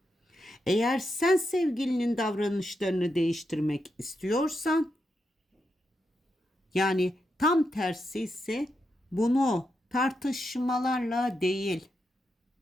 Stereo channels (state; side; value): normal; both; correlation 0.84